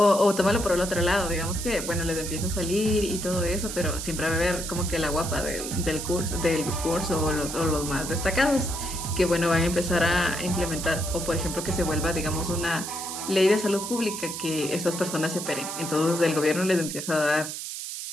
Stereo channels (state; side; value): noise; right; hiss, 7 dB below the sound